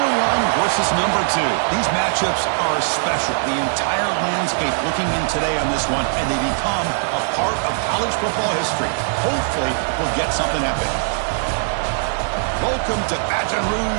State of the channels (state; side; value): silent; left; digital silence